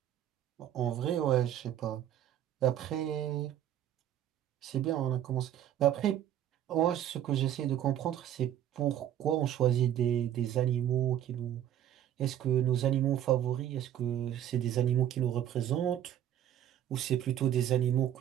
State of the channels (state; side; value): quieter; left; 11.1 dB